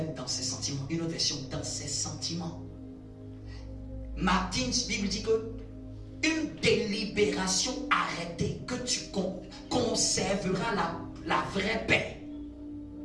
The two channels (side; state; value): both; identical; correlation 1.00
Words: dans ses sentiments. Une autre version, dans ses sentiments. Martin's Bible dit que une délibération arrêtée, que tu conserveras la vraie paix.